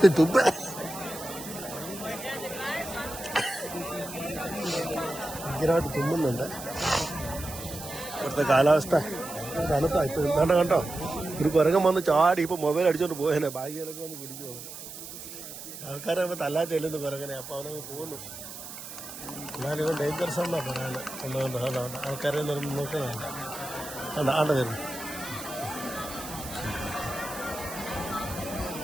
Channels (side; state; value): right; noise; hiss, 11 dB below the sound